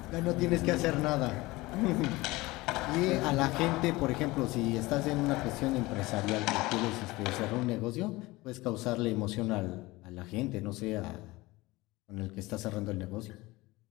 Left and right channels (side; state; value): right; quieter; 20.8 dB